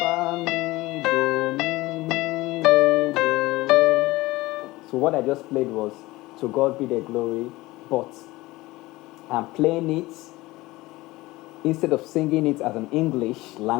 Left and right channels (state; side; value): quieter; right; 19.8 dB